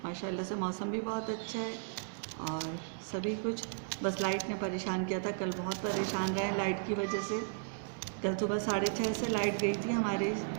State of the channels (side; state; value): left; silent; digital silence